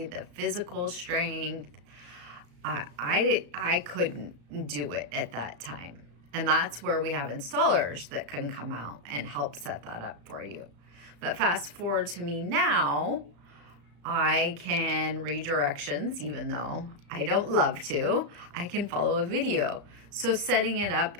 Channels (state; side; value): late; left; 34 ms